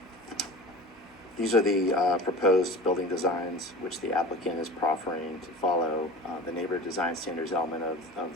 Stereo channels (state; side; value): normal; both; correlation 0.35